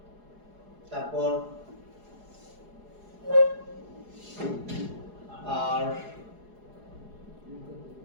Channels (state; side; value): late; left; 4.8 ms